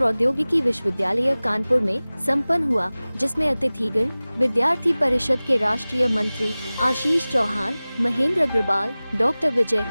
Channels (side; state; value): both; inverted; correlation -0.99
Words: विश्वविद्यालय कानपुर में संपन्न हुआ, जिसमें अतिथिगण विद्यार्थी परिषद के राष्ट्रीय मंत्री Ashish Chauhan, Mahendra Agrawal, doctor Vijay